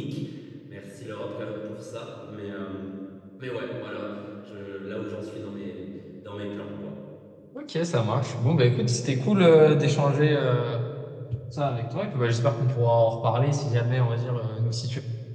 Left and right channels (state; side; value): identical; both; correlation 1.00